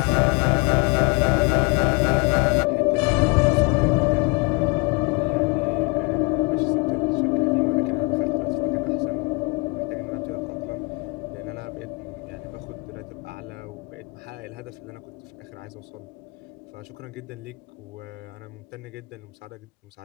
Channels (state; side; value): quieter; right; 29.5 dB